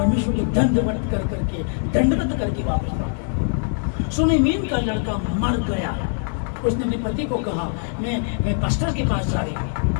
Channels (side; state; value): right; silent; 64 dB below the other